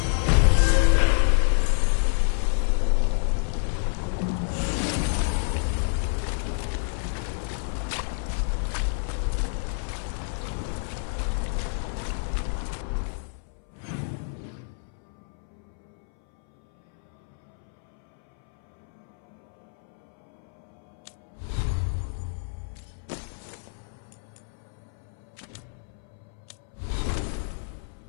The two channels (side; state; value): right; silent; 60 dB below the other